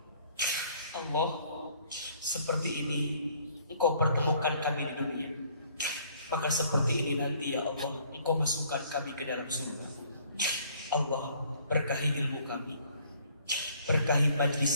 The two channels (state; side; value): inverted; both; correlation -0.60